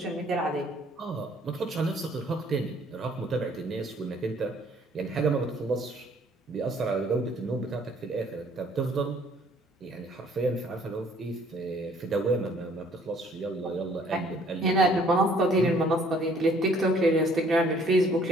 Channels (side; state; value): both; normal; correlation 0.60